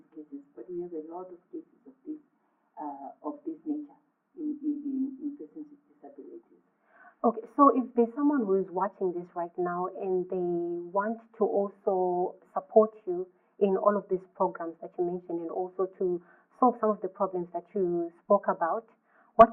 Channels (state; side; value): identical; both; correlation 1.00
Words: cases. But we have a lot of cases of this nature in persons with disabilities. Okay, so if there's someone who is watching this right now and they want to also support you in all of these programs that you mentioned and also to solve some of the problems that you spoke about,